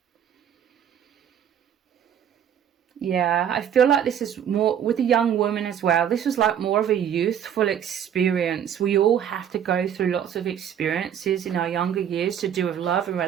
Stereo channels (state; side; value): quieter; left; 9.2 dB